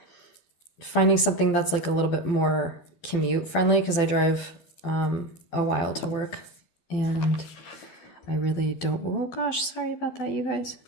finding something that's like a little bit more commute friendly because I drive a while to work and I really don't, oh gosh, sorry about that, you guys.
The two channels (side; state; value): right; late; 12 ms